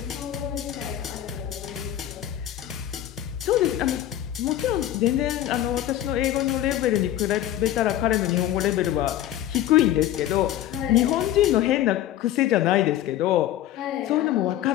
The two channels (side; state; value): right; quieter; 12.6 dB